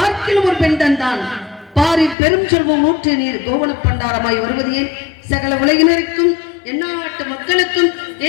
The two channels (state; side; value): drops out; right; at 2.1 s